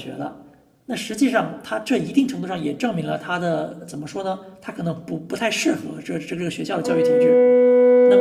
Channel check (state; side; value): identical; both; correlation 1.00